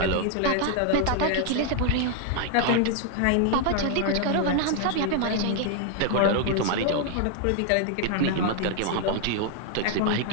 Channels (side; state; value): both; different; correlation 0.00